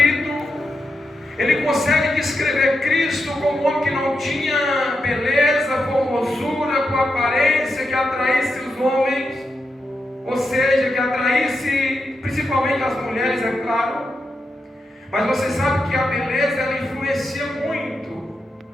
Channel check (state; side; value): normal; both; correlation 0.86